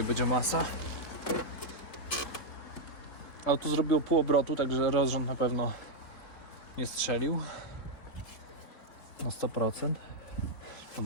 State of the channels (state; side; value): late; right; 4.1 ms